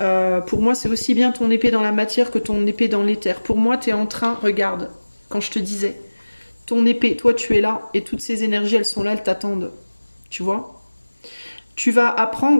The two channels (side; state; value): both; inverted; correlation -1.00